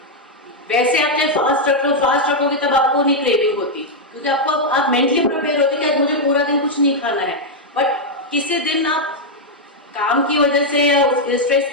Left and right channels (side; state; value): both; normal; correlation -0.01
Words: वैसे आप चाहे फास्ट रखोगे तब आपको नहीं क्रेविंग होती, क्योंकि आप मेंटली प्रिपेयर होते कि आज मुझे पूरा दिन कुछ नहीं खाना है। बट किसी दिन आप काम की वजह से या स्ट्रेस